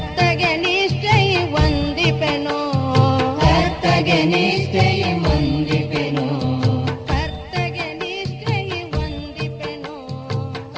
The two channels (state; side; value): identical; both; correlation 1.00